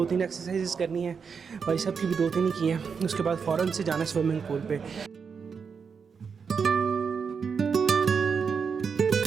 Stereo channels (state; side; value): quieter; left; 6.0 dB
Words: एक्सरसाइजेस करनी है, भाई साहब की भी 2-3 ही की हैं, उसके बाद फ़ौरन से जाना स्विमिंग पूल पे।